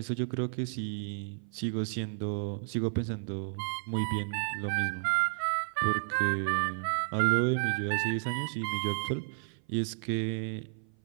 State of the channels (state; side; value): silent; left; 55 dB below the other